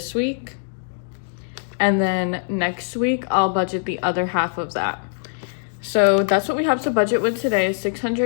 week. And then next week, I'll budget the other half of that. So that's what we have to budget with today, is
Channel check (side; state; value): right; silent; digital silence